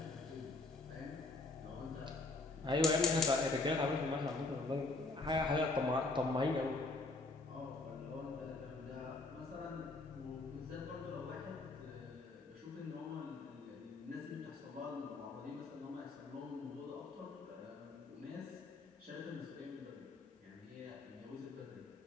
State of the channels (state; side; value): quieter; right; 3.3 dB